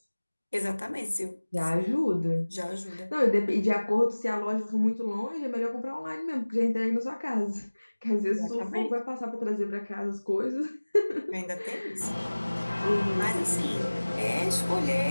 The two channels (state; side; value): inverted; both; correlation -1.00